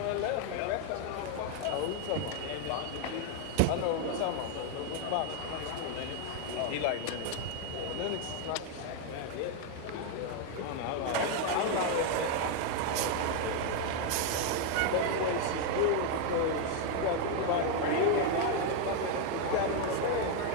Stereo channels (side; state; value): both; different; correlation 0.01